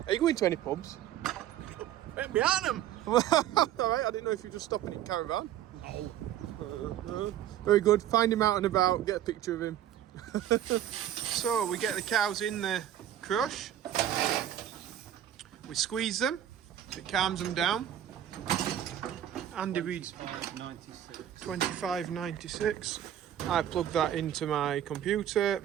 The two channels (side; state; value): left; quieter; 11.2 dB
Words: Are you going to any pubs? Right behind him. Alright, I didn't know if you were just stopping in caravan. No. Very good. Find him out and about, get a picture of him. So we get the cows in the crush. We squeeze them. It calms them down. Andy reads 25.96. I plug that into my computer.